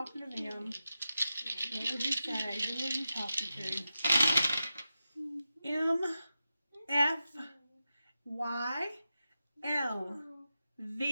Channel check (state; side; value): inverted; both; correlation -0.91